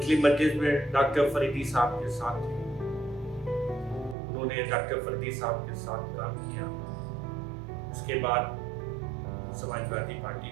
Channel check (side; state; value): left; drops out; at 4.2 s